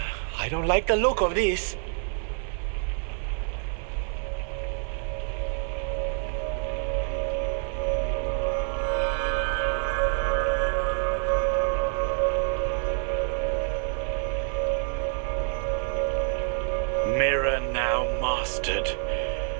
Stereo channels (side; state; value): left; silent; 57 dB below the other